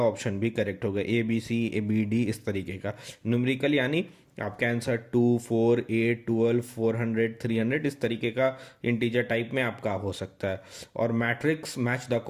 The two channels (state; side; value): identical; both; correlation 1.00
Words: ऑप्शन भी करेक्ट होगा, A B C A B D इस तरीके का। न्यूमेरिकल यानी आपका आंसर 2, 4, 8, 12, 400, 300 इस तरीके का इंटीजर टाइप में आपका हो सकता है। और मैट्रिक्स मैच द